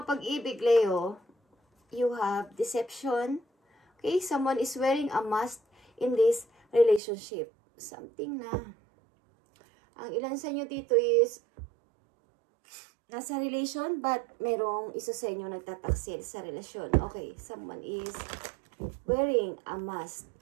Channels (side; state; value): left; drops out; at 7.0 s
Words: Leo, you have deception. Okay, someone is wearing a mask in this relationship. Something na. Ang ilan sa inyo dito is nasa relation but merong isa sa inyo nagtataksil sa relasyon. Okay, someone is wearing a mask